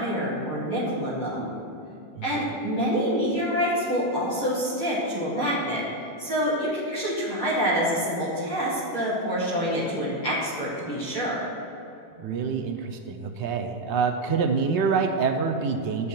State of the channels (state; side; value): late; right; 18 ms